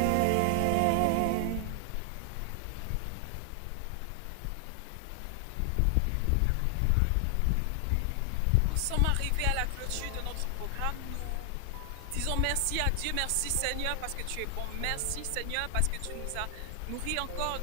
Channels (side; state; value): both; different; correlation 0.00